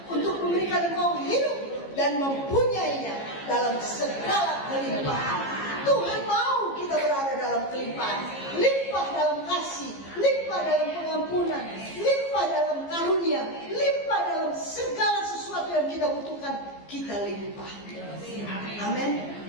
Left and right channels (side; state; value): right; late; 15 ms